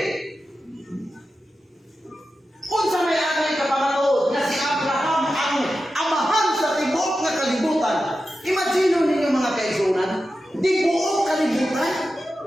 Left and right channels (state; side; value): normal; both; correlation 0.91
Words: Unsa may atay kapamatuod nga si Abraham ang amahan sa tibok nga kalibutan. Imagine ninyo mga kaigsunan, di buok kalibutan.